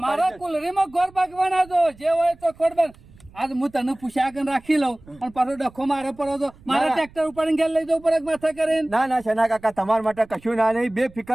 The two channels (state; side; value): noise; right; rumble, 24 dB below the sound